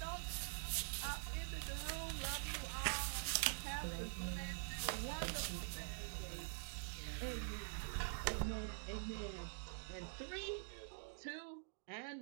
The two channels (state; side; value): silent; left; digital silence